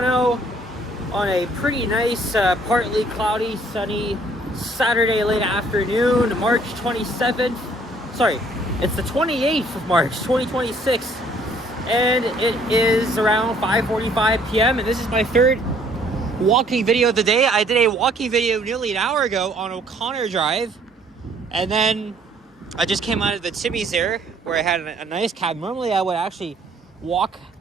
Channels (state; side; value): normal; both; correlation 0.61